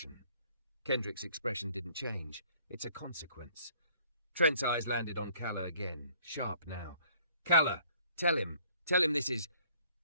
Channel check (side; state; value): both; inverted; correlation -0.58